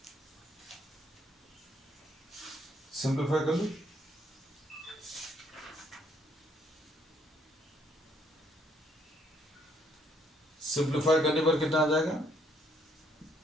सिंप्लीफाई कर लो, सिंप्लीफाई करने पर कितना आ जाएगा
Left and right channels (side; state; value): both; normal; correlation 0.68